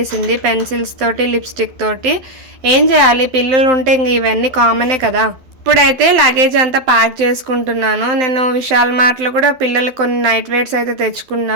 పెన్సిల్స్ తోటి లిప్స్టిక్ తోటి. ఏం చేయాలి, పిల్లలు ఉంటే ఇంక ఇవన్నీ కామనే కదా. ఇప్పుడైతే లగేజ్ అంతా ప్యాక్ చేసుకుంటున్నాను. నేను విశాల్ మార్ట్లో కూడా పిల్లలు కొన్ని నైట్ వేర్స్ అయితే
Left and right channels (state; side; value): late; left; 12 ms